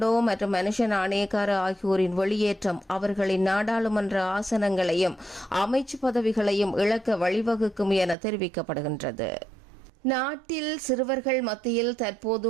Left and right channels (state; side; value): drops out; left; at 8.2 s